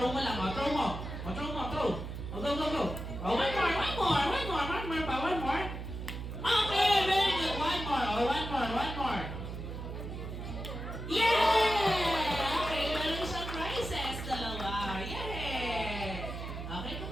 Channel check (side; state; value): right; noise; hum, 7 dB below the sound